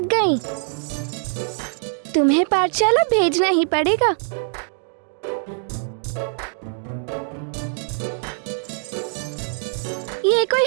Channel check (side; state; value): left; silent; digital silence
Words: गई। तुम्हें पाठशाला भेजना ही पड़ेगा। ये